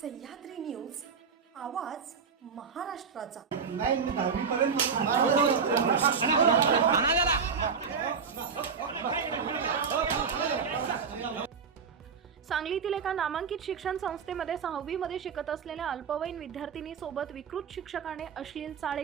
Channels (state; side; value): quieter; left; 6.0 dB